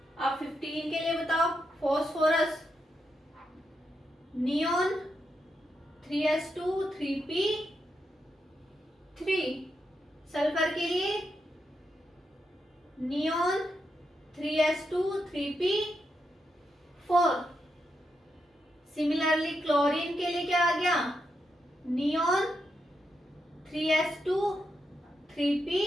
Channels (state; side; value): normal; both; correlation 0.83